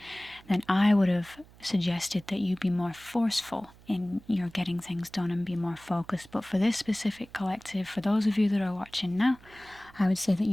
then I would have suggested that you be more forceful in your getting things done and be more focused. But for this specific collective, for those of you that are watching now, I would say that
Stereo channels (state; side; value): noise; right; hum, 24 dB below the sound